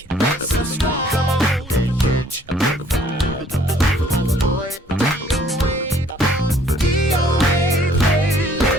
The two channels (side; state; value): both; normal; correlation 0.60